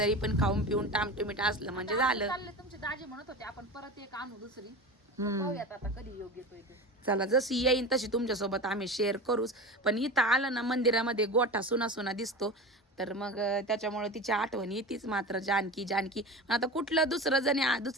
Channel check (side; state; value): both; normal; correlation 0.29